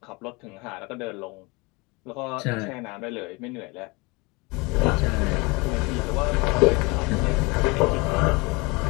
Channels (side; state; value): right; quieter; 26.5 dB